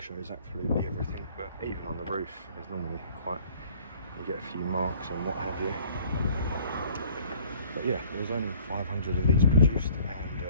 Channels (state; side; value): inverted; both; correlation -0.54